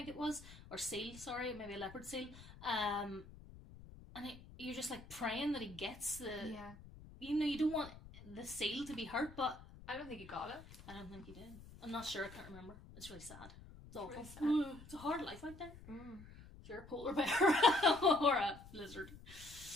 it was, or seal, sorry, maybe a leopard seal, and you're just like praying that he gets the, you don't want the seal to be hurt, but I don't think he got it. I don't think he did. I'm not sure, I can't remember. It's really sad. It's awful. Really sad. It's a hard life out there. If you're a polar bear or a lizard.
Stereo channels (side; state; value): left; noise; rumble, 17 dB below the sound